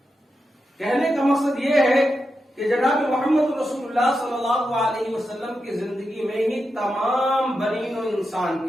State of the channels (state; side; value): normal; both; correlation 0.88